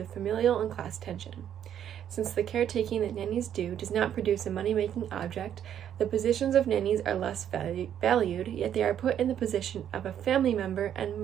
familial and class tension. Since the caretaking that nannies do does not produce a money-making object, the positions of nannies are less valued, yet they are put in the position of a family member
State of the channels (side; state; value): left; quieter; 9.8 dB